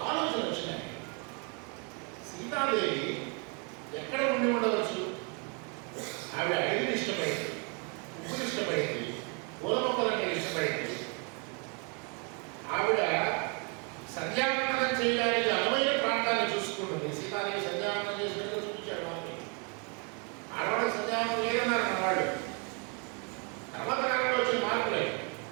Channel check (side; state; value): left; quieter; 35.3 dB